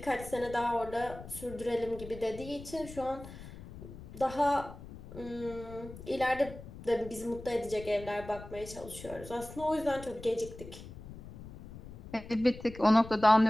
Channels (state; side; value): noise; left; rumble, 14 dB below the sound